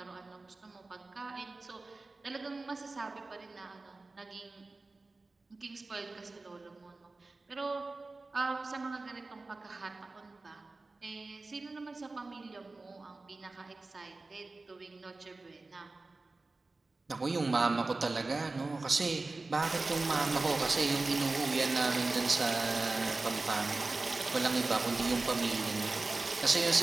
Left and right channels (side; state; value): left; quieter; 3.4 dB